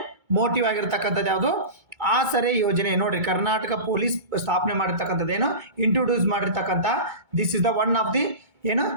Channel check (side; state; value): left; late; 2.2 ms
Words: ಮೋಟಿವ್ ಆಗಿರ್ತಕ್ಕಂಥದ್ದು ಯಾವುದು? ಆಸರೆ ಯೋಜನೆ. ನೋಡ್ರಿ, ಕರ್ನಾಟಕ ಪೊಲೀಸ್ ಸ್ಥಾಪನೆ ಮಾಡಿರ್ತಕ್ಕಂಥದ್ದು ಏನು ಇಂಟ್ರೊಡ್ಯೂಸ್ ಮಾಡಿರ್ತಕ್ಕಂಥ this is the one of the ಏನು